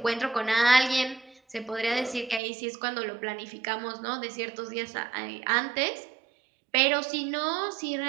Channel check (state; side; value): drops out; left; at 2.4 s